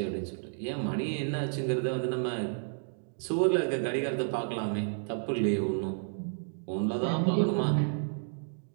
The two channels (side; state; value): left; silent; digital silence